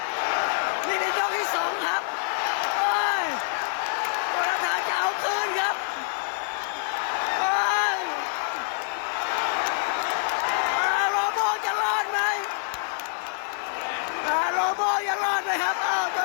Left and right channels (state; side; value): silent; right; digital silence